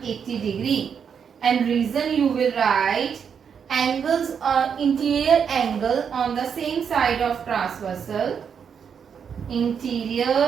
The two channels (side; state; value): left; quieter; 7.1 dB